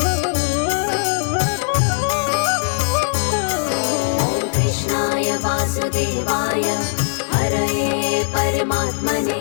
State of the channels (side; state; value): right; silent; 63 dB below the other